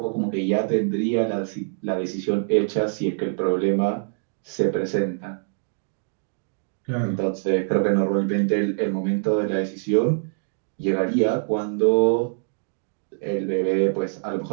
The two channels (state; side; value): silent; left; digital silence